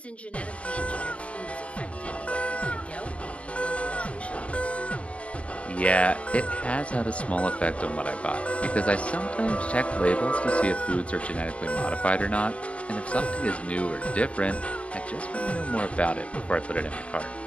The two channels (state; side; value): late; right; 0.063 ms